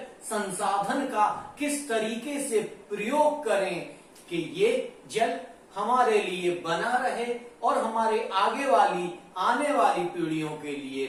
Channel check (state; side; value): identical; both; correlation 1.00